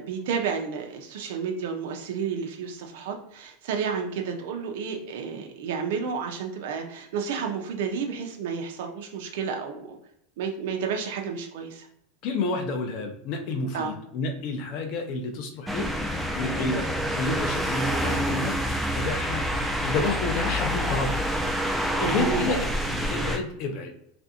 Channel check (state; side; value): normal; both; correlation 0.32